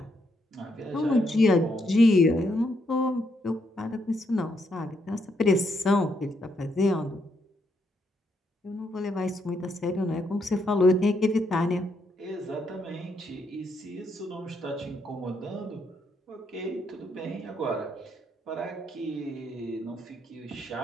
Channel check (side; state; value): both; normal; correlation 0.76